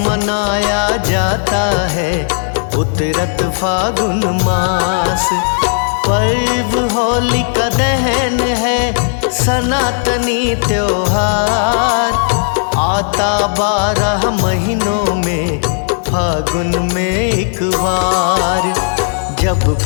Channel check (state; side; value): silent; right; digital silence